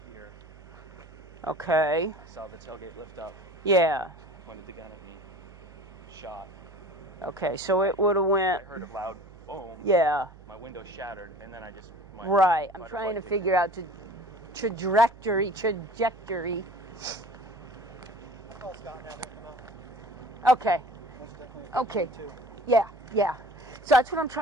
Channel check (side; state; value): right; noise; hum, 20 dB below the sound